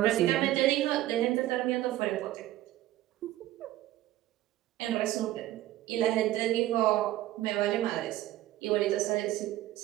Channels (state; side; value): quieter; left; 15.0 dB